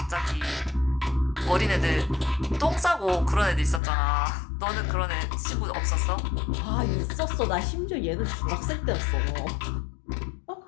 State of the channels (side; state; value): right; drops out; at 3.8 s